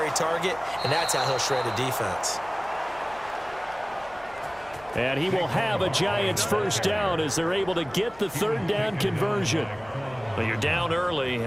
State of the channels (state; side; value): noise; left; hum, 23 dB below the sound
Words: target, and that's how he'll shred a defense. And he will have a Giants first down as they're able to get the third down conversion. Well, you're down early.